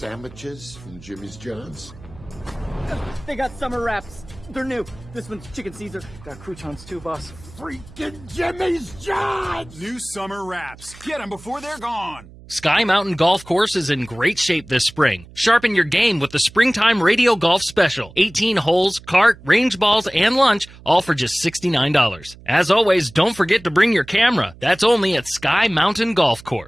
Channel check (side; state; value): right; noise; hum, 21 dB below the sound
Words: from Jimmy's John's? They got summer wraps. They're new. This one's chicken Caesar. Got croutons too, boss. Freaking Jimmy's John's! New summer wraps. Get them before they're gone. Sky Mountain Golf Course is in great shape this spring. Sharpen your game with the Springtime Radio Golf Special. 18 holes, cart, range balls, and lunch, all for just $69. As always, don't forget to bring your camera. That's only at Sky Mountain Golf